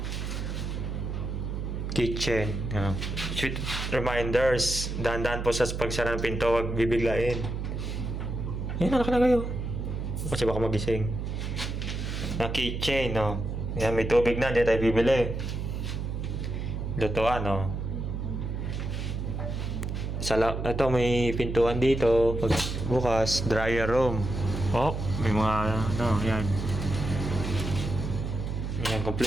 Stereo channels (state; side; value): noise; right; hum, 4 dB below the sound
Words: kitchen. Sweet reminders. Dahan-dahan po sa pagsara ng pinto, wag bibiglain. Yan, anak na kayo. Kasi baka magising. Na kitchen, no. Yan, may tubig na, hindi tayo bibili. Lutuan, no. Ito, may pintuan dito. Pag bukas, dryer room. Oh, may mga, ano, yan. Yan,